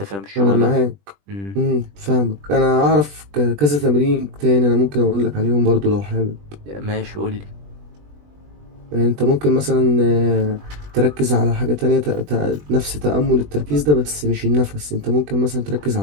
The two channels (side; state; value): left; late; 20 ms